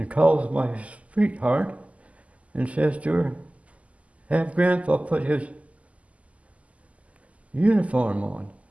calls my sweetheart and says to her, have Grandpa put his uniform on,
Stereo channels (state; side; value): late; left; 0.067 ms